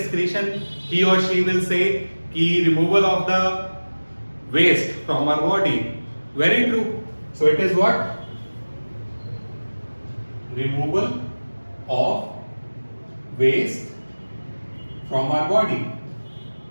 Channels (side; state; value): both; inverted; correlation -1.00